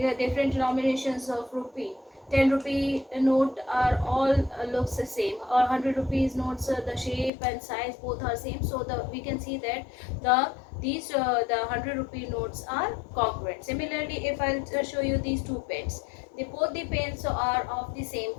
the different denominations of rupee. 10 rupee note are all looks the same, or 100 rupees notes, the shape and size both are same. So we can see that the 100 rupee notes are congruent. Similarly, if I'll show you these two pens, both the pens are of the same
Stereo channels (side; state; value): right; drops out; at 7.3 s